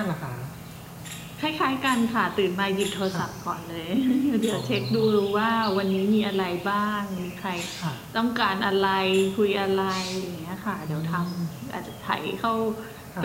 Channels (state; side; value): identical; both; correlation 1.00